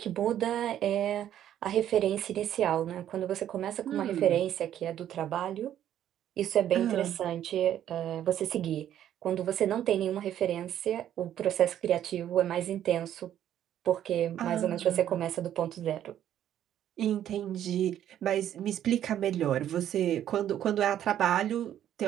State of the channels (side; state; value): left; quieter; 11.0 dB